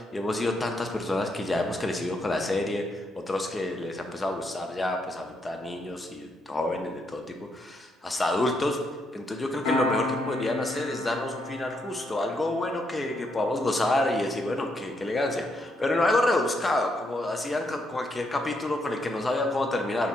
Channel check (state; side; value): normal; both; correlation 0.77